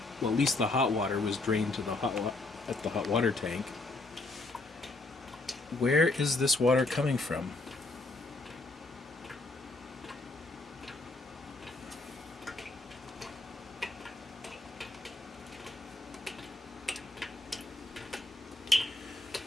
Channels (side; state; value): right; quieter; 3.1 dB